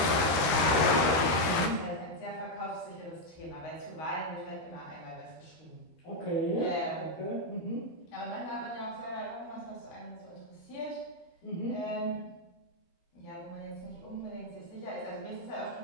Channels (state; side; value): late; right; 13 ms